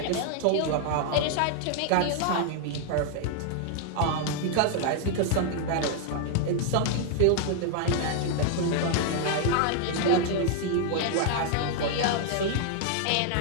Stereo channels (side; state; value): both; different; correlation 0.00